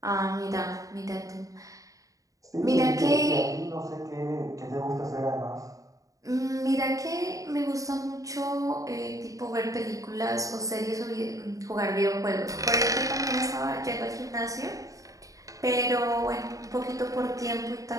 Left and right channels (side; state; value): left; late; 0.16 ms